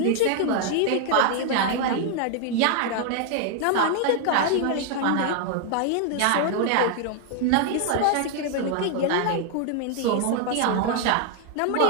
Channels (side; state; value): both; different; correlation 0.00